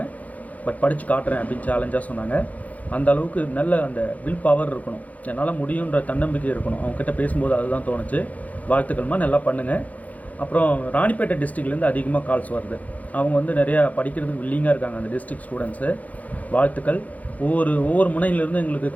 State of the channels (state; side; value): late; right; 0.074 ms